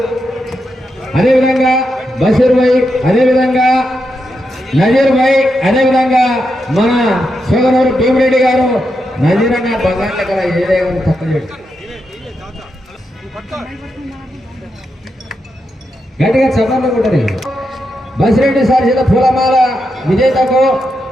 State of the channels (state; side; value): normal; both; correlation 0.85